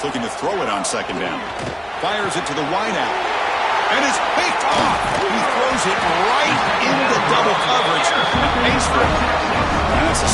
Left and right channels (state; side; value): identical; both; correlation 1.00